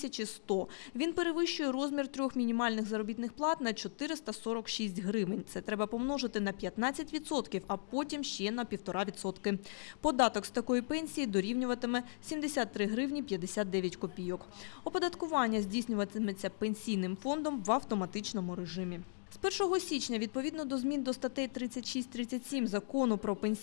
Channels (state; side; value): silent; right; digital silence